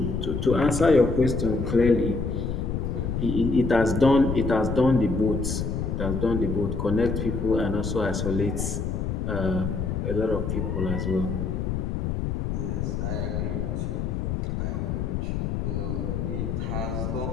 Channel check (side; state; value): left; noise; rumble, 1 dB below the sound